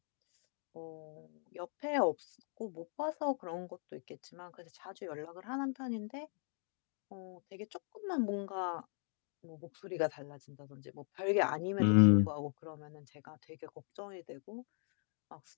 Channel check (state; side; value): silent; right; 52 dB below the other